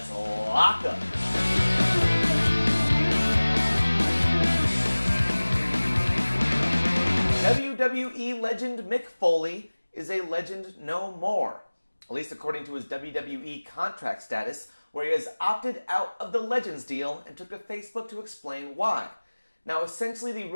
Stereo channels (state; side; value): inverted; both; correlation -1.00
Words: lock up. WWE legend Mick Foley is a legend no more, at least according to his WWE contract status, where he has opted out of the Legends deal and took to Facebook to explain why. Now, essentially, the